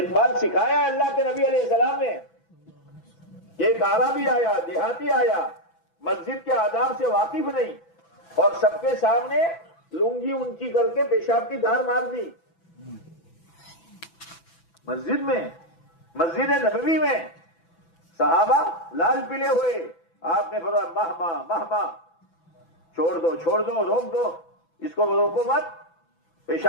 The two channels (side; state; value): right; late; 6.0 ms